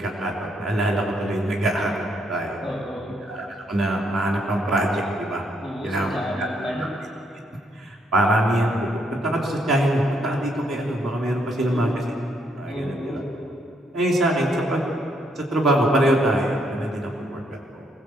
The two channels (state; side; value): normal; both; correlation 0.73